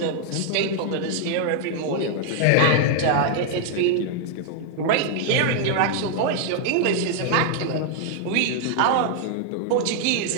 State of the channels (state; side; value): different; both; correlation 0.00